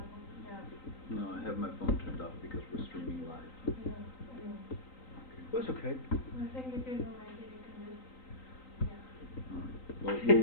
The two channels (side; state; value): right; late; 3.9 ms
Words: home. Yeah. No, I have my phone turned off because we're streaming live. Yeah. I know. It's okay. I think if you don't like it, you can just. Yeah. Alright. Well,